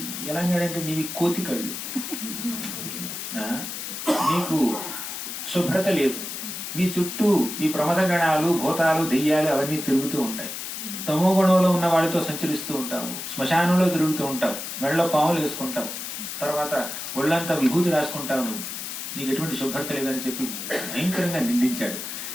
ఎలా అన్నాడంటే, నీవి కోతి కళ్ళు, నీకు శుభ్రత లేదు, నీ చుట్టూ ఈ ప్రమద గణాలు, భూతాలు, దెయ్యాలు అవన్నీ తిరుగుతూ ఉంటాయి. తమో గుణంలో ఉన్న వాడితో సంచరిస్తూ ఉంటావు, శ్మశానంలో తిరుగుతూ ఉంటావు, మెడలో పాములు వేసుకుంటావు, తర్వాత ఒళ్ళంతా విభూతి రాసుకుంటావు, నీకు ఎటువంటి శుభ్రత లేదని చెప్పి భయంకరంగా నిందించాడు.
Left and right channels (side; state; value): left; noise; hiss, 7 dB below the sound